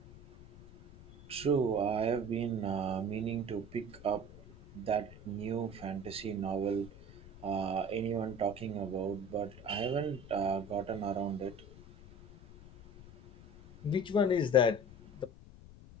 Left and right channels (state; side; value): noise; left; rumble, 19 dB below the sound